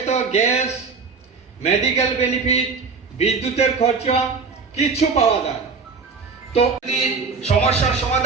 গ্যাস, মেডিকেল বেনিফিট, বিদ্যুতের খরচা, কিছু পাওয়া যায়। তো সমস্যার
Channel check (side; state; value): left; quieter; 4.9 dB